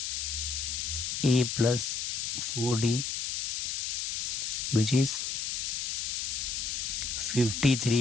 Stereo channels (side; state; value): left; noise; hiss, 1 dB below the sound